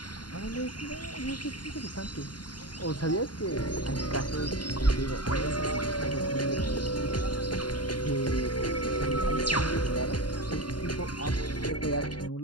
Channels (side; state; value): right; late; 0.70 ms